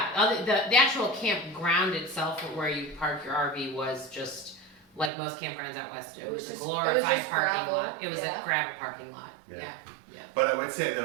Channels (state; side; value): drops out; left; at 5.1 s